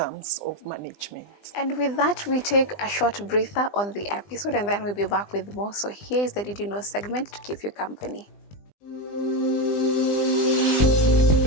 of management. And with that, we take a short breather on the episode, and then we'll be back with more. So here is the Did You Know segment to keep you company.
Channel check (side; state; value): right; late; 20 ms